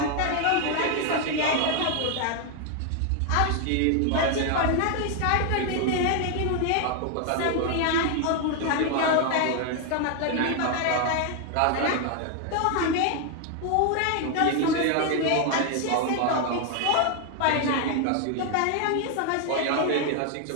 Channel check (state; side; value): different; both; correlation 0.00